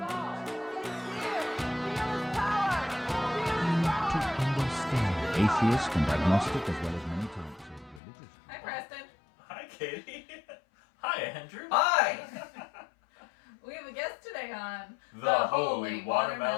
To understand. Atheist and agnostic as well as many types of religious. Hi, Preston. Hi, Katie. Hi, Andrew. Hi. We have a guest today on The Holy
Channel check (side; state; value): right; drops out; at 8.0 s